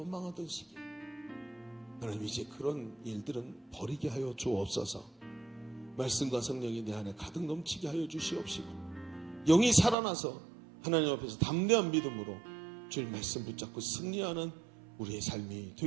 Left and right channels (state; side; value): drops out; left; at 10.0 s